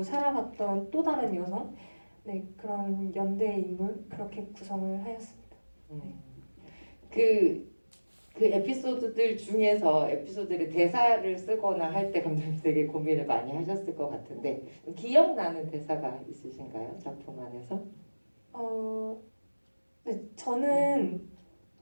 살아갔던 또 다른 여성, 네, 그런 연대의 인물 그렇게 구성을 하였습니다. 그 에피소드들 중에서 에피소드를 대사를 쓰거나 할 때 감독님 되게 고민을 많이 하셨을 것 같은데 기억나는 대사가 있으신가요? 작품 안에서? 네, 저는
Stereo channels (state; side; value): inverted; both; correlation -1.00